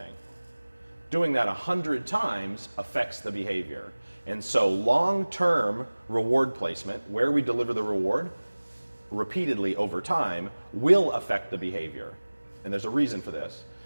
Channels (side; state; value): both; inverted; correlation -1.00